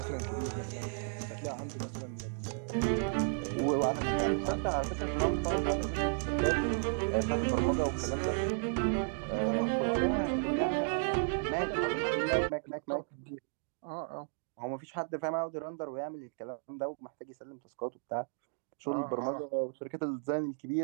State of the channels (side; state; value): left; silent; digital silence